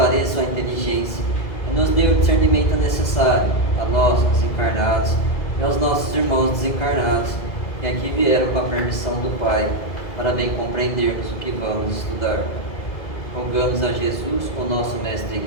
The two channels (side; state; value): right; late; 2.0 ms